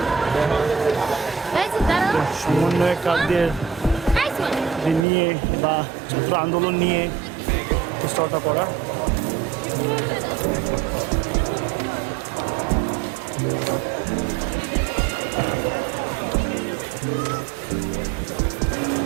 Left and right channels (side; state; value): left; drops out; at 5.1 s